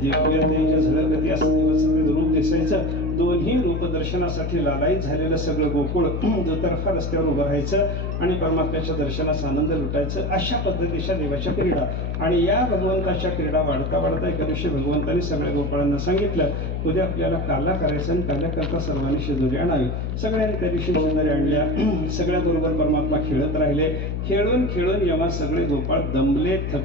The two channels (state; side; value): noise; left; hum, 2 dB below the sound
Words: दिव्य तेज झळकती असं दिवसाचं रूप दिसायचं. दोन्ही रूपदर्शनासाठी लालायित झालेलं सगळं गोकुळ दुतर्फा रस्त्यावर उभं राहायचं आणि परमात्म्याच्या दर्शनाचा आनंद लुटायचं. अशा पद्धतीच्या देवाच्या क्रीडा. आणि या भगवंताच्या क्रीडा वाढता वाढता एका दिवशी भगवंतांनी सगळ्या गोपाळांना सांगितलं, उद्या आपल्याला काला करायचं आणि काल्याकरता सर्वांनी शिदोरी आणावी. सगळ्यांनी त्या दिवशी शिदोरी आणल्या. सगळ्या बरोबर परमात्मा खेळत राहिले. खेळून खेळून जेव्हा सगळे गोपाळ दमले,